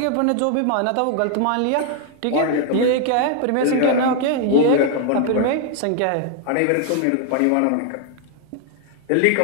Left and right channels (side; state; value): both; different; correlation 0.00